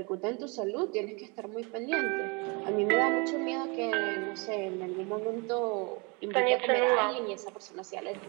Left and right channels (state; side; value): quieter; left; 30.4 dB